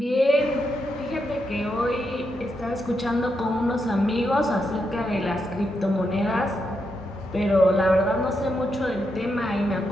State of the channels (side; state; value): both; normal; correlation 0.83